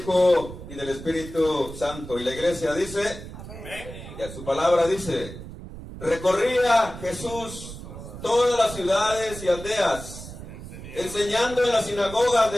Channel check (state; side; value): noise; right; rumble, 12 dB below the sound